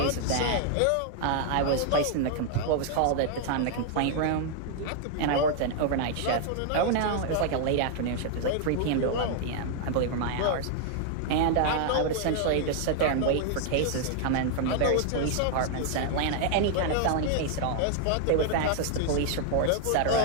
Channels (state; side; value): different; both; correlation 0.00